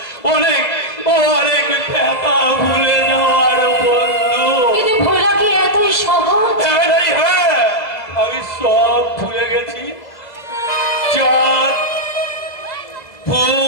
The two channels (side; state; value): right; late; 2.0 ms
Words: অনেক অনেক ব্যথা ভুলে যাওয়ার বন্ধু। কিন্তু ভোলা কি এতই সহজ? হ্যাঁ নারী, হ্যাঁ, আমি সব ভুলে গেছি। চাঁদ,